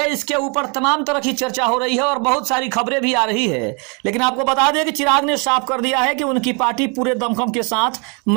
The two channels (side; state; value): left; quieter; 33.9 dB